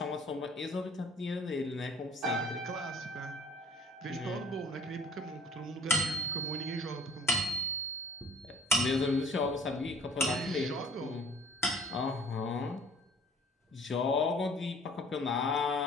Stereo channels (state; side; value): normal; both; correlation 0.50